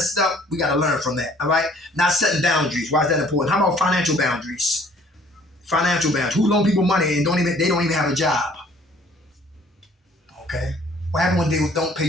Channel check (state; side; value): normal; both; correlation 0.57